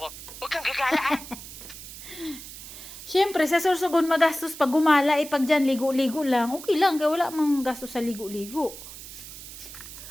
huwag kang gagalaan. Siyempre, sa Sorsogon magastos pag gumala. Pag dyan, ligo-ligo lang. Okay lang, kaya wala mang gastos sa ligo-ligo.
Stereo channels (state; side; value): noise; right; hiss, 13 dB below the sound